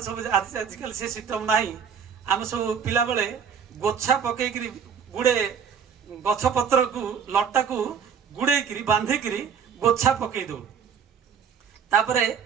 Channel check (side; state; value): left; quieter; 6.9 dB